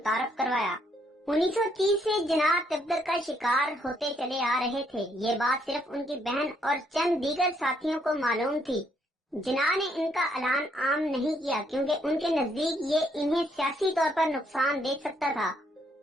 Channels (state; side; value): normal; both; correlation 0.71